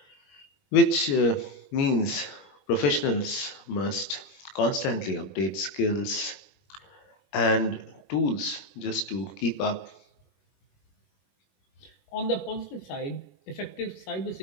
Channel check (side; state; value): right; late; 21 ms